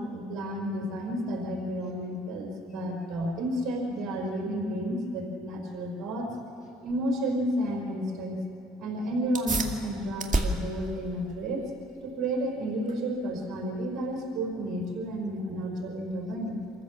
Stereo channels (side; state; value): both; normal; correlation 0.58